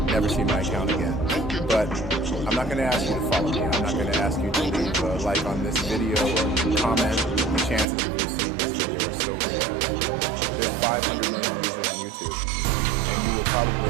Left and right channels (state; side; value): drops out; left; at 7.9 s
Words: never see my account again. But I'm not going to ask you to follow me. I'm not going to ask you to leave a like on this video or comment. The chances of you seeing this video are so rare. There's 500 million users on YouTube, and you will